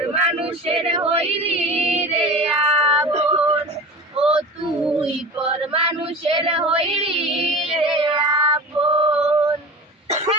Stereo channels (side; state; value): both; normal; correlation 0.34